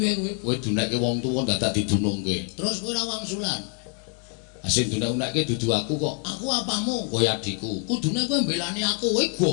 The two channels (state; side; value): quieter; right; 38.8 dB